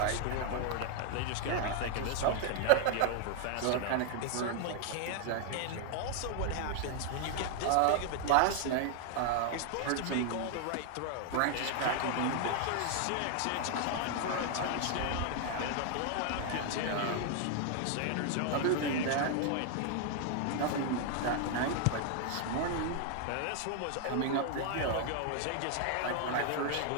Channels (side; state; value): both; different; correlation 0.00